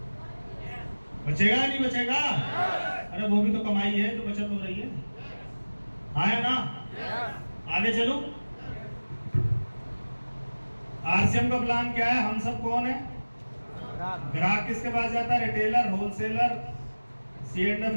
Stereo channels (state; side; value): inverted; both; correlation -1.00